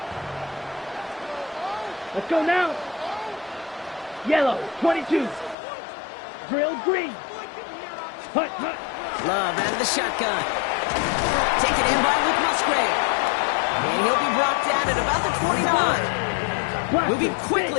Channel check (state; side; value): drops out; right; at 5.6 s